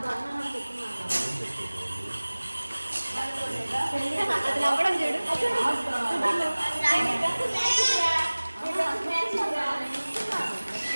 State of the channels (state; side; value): inverted; both; correlation -1.00